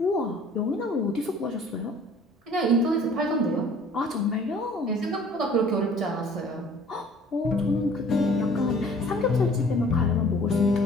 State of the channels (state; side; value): normal; both; correlation 0.52